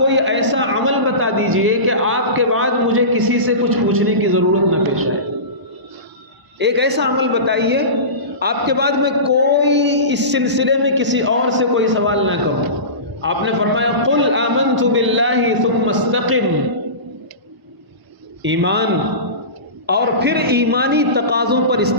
ایسا عمل بتا دیجئے کہ آپ کے بعد مجھے کسی سے کچھ پوچھنے کی ضرورت نہ پیش آئے۔ ایک ایسا عمل بتائیے آپ کے بعد میں کوئی اس سلسلے میں کسی اور سے کوئی سوال نہ کروں۔ آپ نے فرمایا قل آمنت باللہ ثم استقم، ایمان اور پھر ایمانی تقاضوں پر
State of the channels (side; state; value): left; late; 1.0 ms